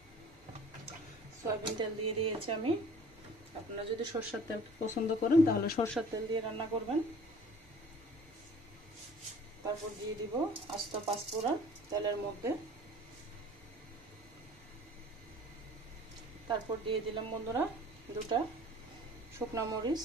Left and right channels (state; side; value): normal; both; correlation 0.49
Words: সয়াবিন তেল দিয়ে দিয়েছি আমি। আপনারা যদি সরষের তেল পছন্দ করেন তাহলে সরষের তেল দিয়ে রান্না করবেন। তারপর দিয়ে দিব আস্ত পাঁচফোড়ন তেলের মধ্যে। তারপর দিয়ে দিলাম বন্ধুরা দুটা শুকনো মরিচ,